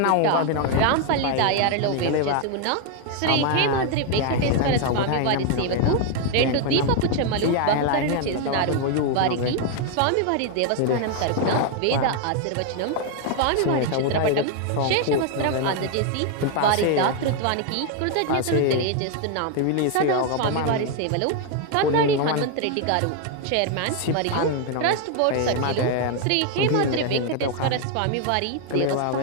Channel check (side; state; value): both; different; correlation 0.00